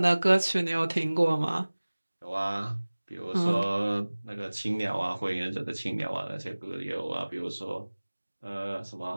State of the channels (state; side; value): inverted; both; correlation -1.00